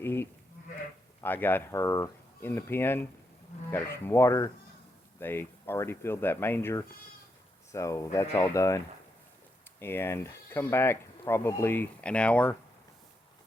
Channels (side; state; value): both; normal; correlation 0.81